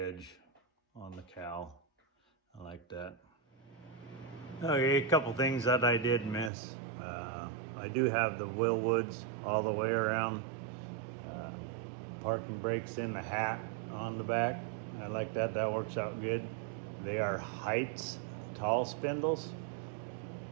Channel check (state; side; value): drops out; left; at 6.5 s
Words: on the cowl. I like that. Okay, a couple things that I did miss. I do have the Willwoods all the way around. Parking brakes in the hat on the back. I like that, that works out good. They are Heights tall spindles.